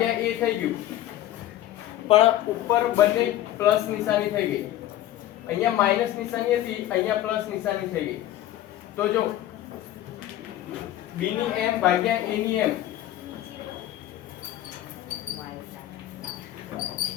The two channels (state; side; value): quieter; right; 13.5 dB